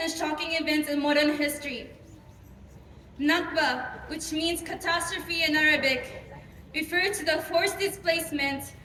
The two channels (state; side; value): identical; both; correlation 1.00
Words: and shocking events in modern history. Nakba, which means catastrophe in Arabic, refers to the forced displacement,